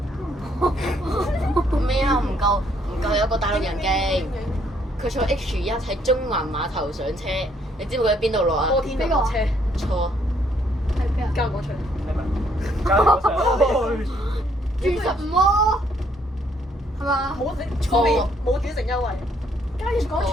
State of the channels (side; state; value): both; normal; correlation 0.68